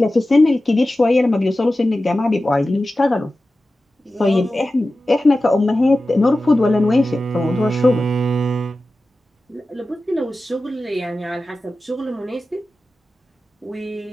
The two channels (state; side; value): normal; both; correlation 0.94